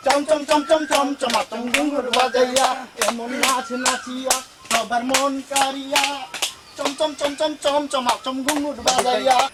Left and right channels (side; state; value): both; identical; correlation 1.00